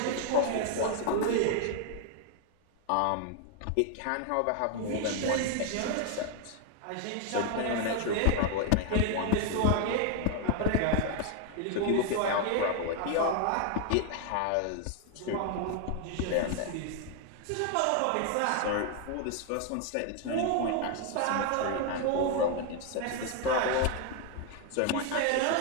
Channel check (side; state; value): both; different; correlation 0.01